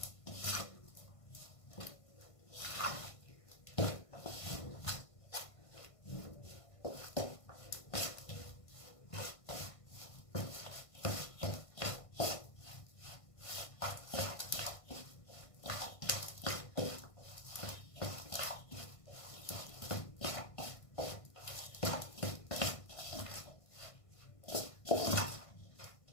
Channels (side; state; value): right; late; 1.5 ms